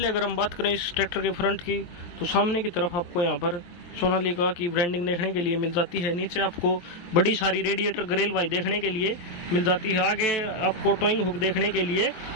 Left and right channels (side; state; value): right; late; 23 ms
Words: अगर हम बात करें इस ट्रैक्टर के फ्रंट की, तो सामने की तरफ आपको यहाँ पर सोनालिका की ब्रांडिंग देखने के लिए मिल जाती है। नीचे आपको बड़ी सारी रेडिएटर ग्रिल भाई देखने के लिए मिल जाती है। आगे आपको टोइंग हुक देखने के लिए